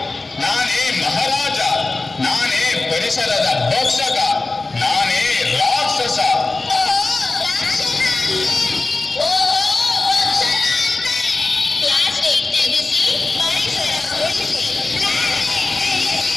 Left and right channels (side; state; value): right; quieter; 3.4 dB